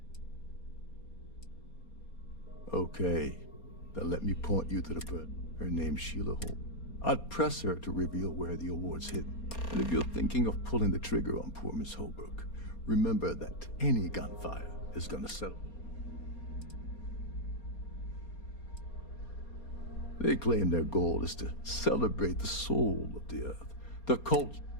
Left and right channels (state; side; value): late; right; 4.3 ms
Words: Okay, then let me point you to the bird. Her name's Sheila Holmes. I'd press her to reveal where the award's hidden. And if you're thinking of pulling the trigger on poor Miss Holbrook, remember that any gunfire is gonna settle. They claim their goal is to celebrate the soul of the Earth, the culture